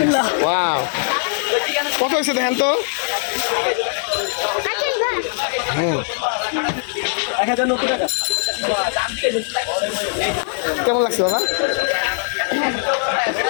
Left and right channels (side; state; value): right; silent; digital silence